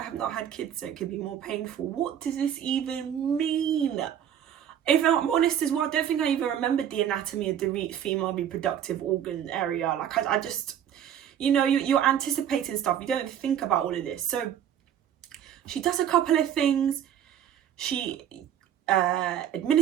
have not had kids, so it could be more painful. What does this even mean? If I'm honest as well, I don't think I even remembered the anatomy of the female reproductive organ area. Like I just, you know, you're anticipating stuff. You don't think about all of this. So she does a couple of things. She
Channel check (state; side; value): quieter; left; 9.8 dB